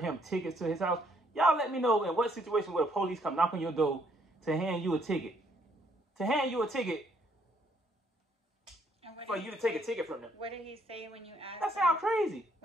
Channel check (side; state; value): both; normal; correlation 0.68